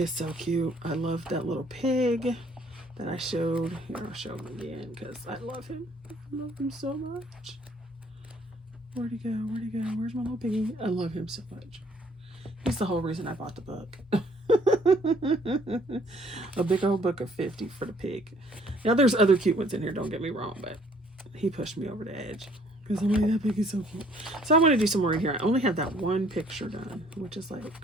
so cute. I love that little pig that I showed. Here, I'll show him again because I love him. I love him so much. Where'd he go? Where'd he go? Where's my little piggy? I love him so much. He's the whole reason I bought the book. A big old book of 50 for the pig. Now, there's other cute ones in here, don't get me wrong, but he pushed me over the edge because I'm like, that pig is so cute. So I want to do some more in here. I only have that one picture done, which is like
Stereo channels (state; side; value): normal; both; correlation 0.61